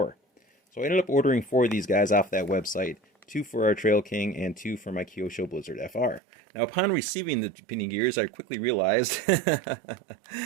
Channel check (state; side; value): drops out; left; at 6.2 s